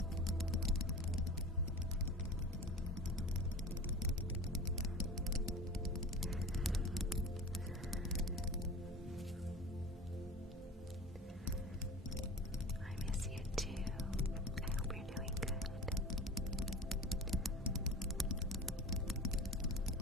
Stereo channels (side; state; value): both; normal; correlation 0.35